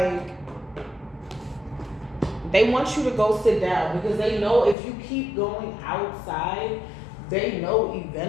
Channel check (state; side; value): drops out; right; at 4.8 s